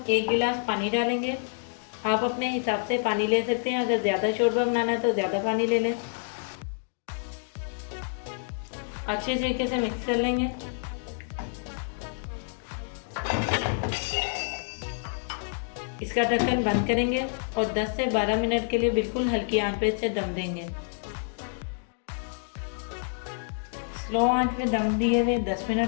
1 गिलास पानी डालेंगे। आप अपने हिसाब से पानी ले सकते हैं, अगर ज़्यादा शोरबा बनाना है तो ज़्यादा पानी ले लें। अच्छे तरीके से मिक्स कर लेंगे। इसका ढक्कन बंद करेंगे और 10 से 12 मिनट के लिए बिल्कुल हल्की आंच पे इसे दम देंगे। स्लो आंच पे दम दिए हुए 10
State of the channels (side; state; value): right; silent; 59 dB below the other